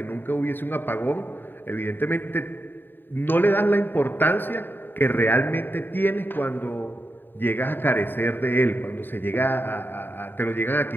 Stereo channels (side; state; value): right; late; 0.094 ms